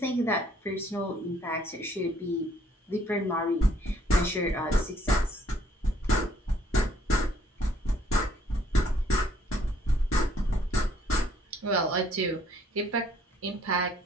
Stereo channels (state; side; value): normal; both; correlation 0.64